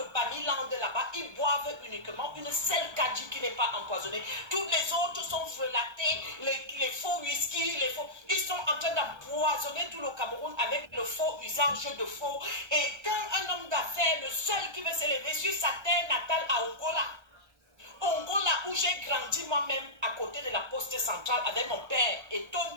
Bamiland là-bas, ils boivent uniquement une seule kadji qui n'est pas empoisonnée. Toutes les autres sont frelatées, les faux whisky, les faux. Ils sont en train d'empoisonner tout le Cameroun avec le faux usage de faux. Et quand un homme d'affaires, le seul qui veut s'élever sur sa terre natale à Angola, où j'ai grandi moi-même à côté de la poste centrale avec mon père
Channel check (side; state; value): left; late; 1.3 ms